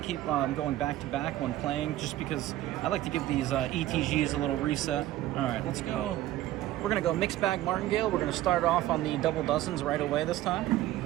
keep going back to back when playing, just because I like to give these ETGs a little reset. All right, let's go. We're going to go mixed bag Martingale. We're going to start off on the double dozens right away this time.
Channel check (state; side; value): quieter; left; 14.7 dB